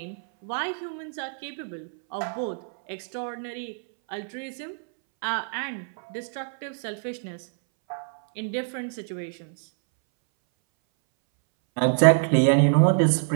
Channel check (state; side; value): silent; left; 61 dB below the other